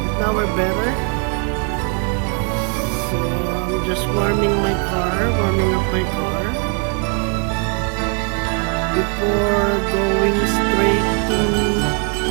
But now we're better. So I'm just warming up my car. Before going straight to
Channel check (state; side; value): quieter; left; 36.1 dB